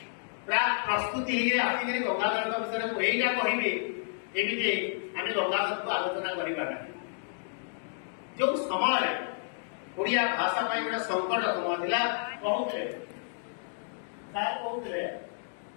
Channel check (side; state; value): right; silent; digital silence